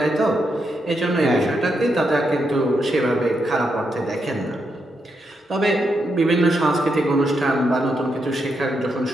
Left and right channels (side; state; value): both; normal; correlation 0.82